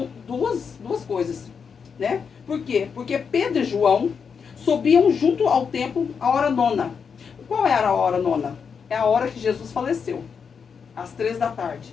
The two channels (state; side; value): quieter; right; 6.2 dB